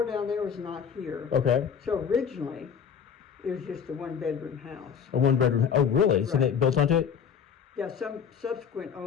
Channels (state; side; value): quieter; right; 7.3 dB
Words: down there was not here. Okay. So originally, it was just a one-bedroom house. A one-bedroom. Oh, really? Right. So they built onto it? Yeah, some subsequent